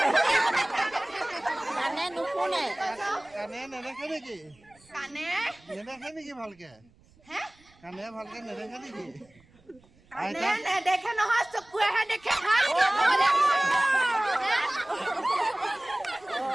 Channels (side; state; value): right; noise; rumble, 30 dB below the sound